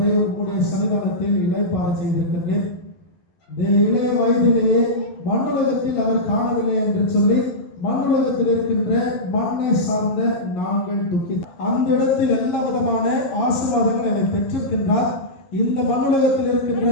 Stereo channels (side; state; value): right; late; 11 ms